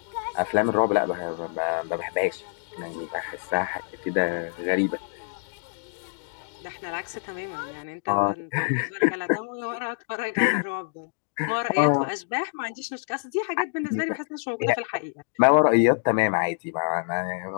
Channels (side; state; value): right; silent; digital silence